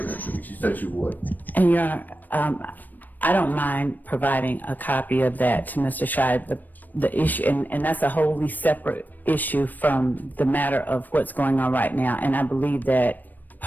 it to me. She said she would. And Your Honor, I don't mind providing a copy of that to Mr. Scheib. The issue, and that's a wholly separate issue from the matter of what's going on right now. And I believe that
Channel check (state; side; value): late; right; 0.087 ms